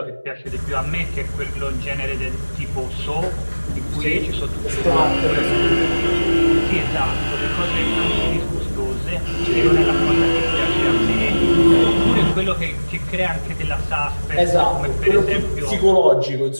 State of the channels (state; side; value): inverted; both; correlation -1.00